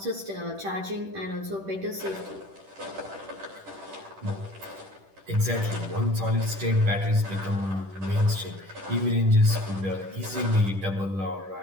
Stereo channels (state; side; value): late; left; 10 ms